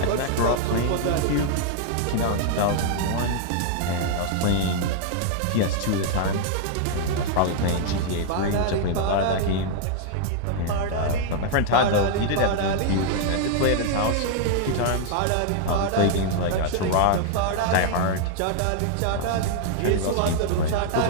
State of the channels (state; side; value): different; both; correlation 0.00